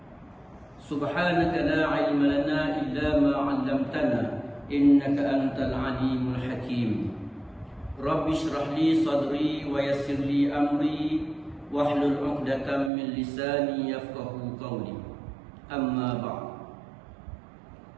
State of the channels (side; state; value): left; drops out; at 12.9 s